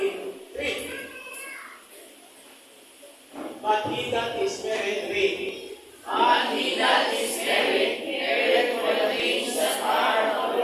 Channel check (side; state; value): both; identical; correlation 1.00